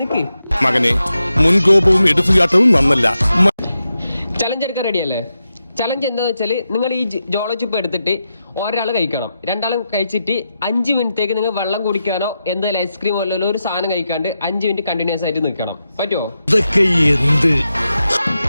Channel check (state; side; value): inverted; both; correlation -0.88